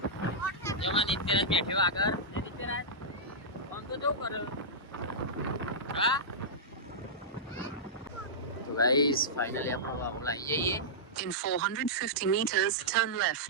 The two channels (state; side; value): normal; both; correlation -0.13